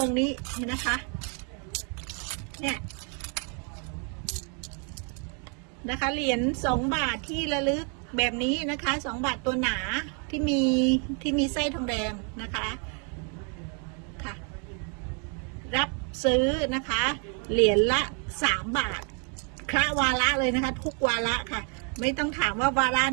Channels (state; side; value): quieter; left; 39.3 dB